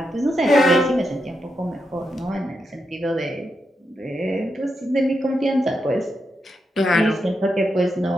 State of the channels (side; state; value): both; normal; correlation 0.85